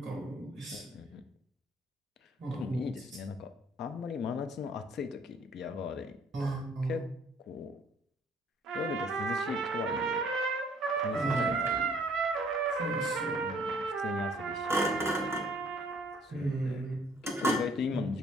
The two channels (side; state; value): both; normal; correlation 0.59